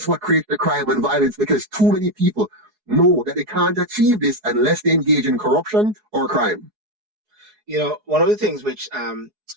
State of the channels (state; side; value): late; left; 4.7 ms